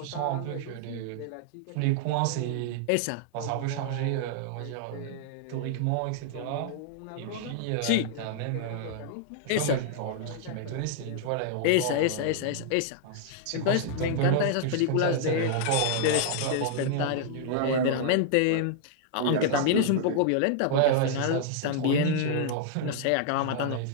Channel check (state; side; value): different; both; correlation -0.01